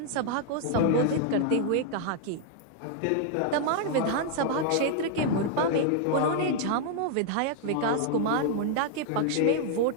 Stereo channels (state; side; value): different; both; correlation 0.00